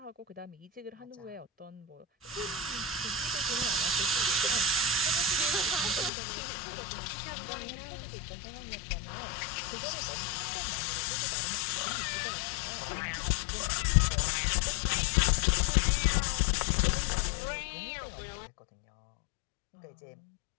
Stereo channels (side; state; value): right; drops out; at 6.1 s